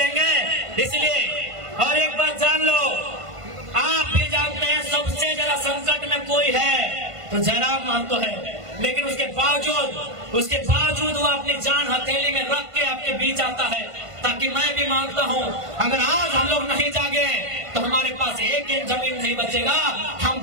इसलिए और एक बात जान लो, आप भी जानते हैं सबसे ज्यादा संकट में कोई है तो जयराम महतो है, लेकिन उसके बावजूद वो अपनी जान हथेली में रख के आपके बीच आता है, ताकि मैं भी मानता हूँ अगर आज हम लोग नहीं जागे तो हमारे पास एक जमीन नहीं बचेगा, हम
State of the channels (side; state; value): left; late; 1.5 ms